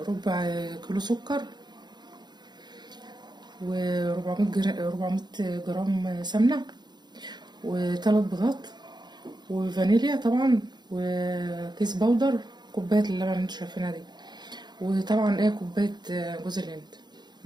ربع كيلو سكر، و400 جرام سمنه، وثلاث بيضات، وفانيليا طبعا، وكيس بودر، كوبايه اللبن اللي انتوا شايفينها دي، وطبعا كوبايه جوز الهند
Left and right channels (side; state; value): left; late; 0.21 ms